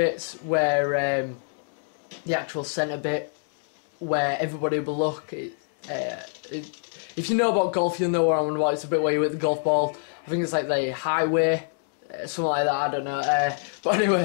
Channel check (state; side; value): silent; right; digital silence